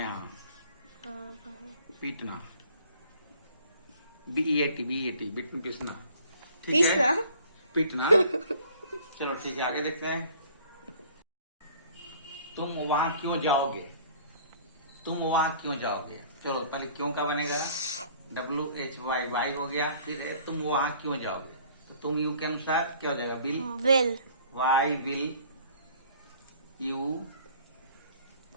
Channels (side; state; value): both; inverted; correlation -0.52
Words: हाँ, पीटना, BEAT, बीट में पीसना, ठीक पीसना? है, पीटना। चलो ठीक है, आगे देखते हैं। तुम वहां क्यों जाओगे, तुम वहां क्यों जाओगे। चलो पहले क्यों का बनेगा, WHY, वाई हो गया। फिर है तुम वहां क्यों जाओगे, तो तुम यू के अनुसार क्या हो जाएगा, will, why will you